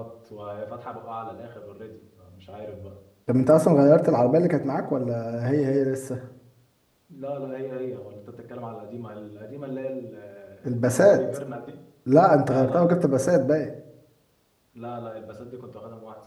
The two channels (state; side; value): identical; both; correlation 1.00